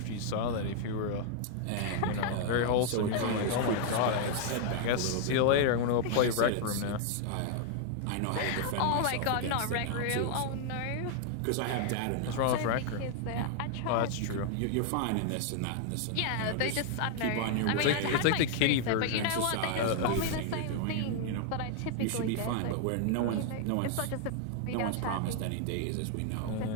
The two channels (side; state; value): both; different; correlation 0.00